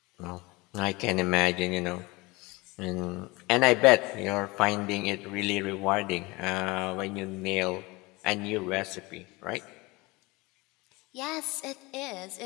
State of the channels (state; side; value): quieter; right; 23.8 dB